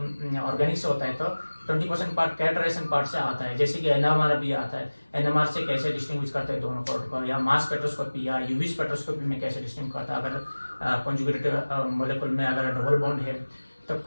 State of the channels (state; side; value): inverted; both; correlation -1.00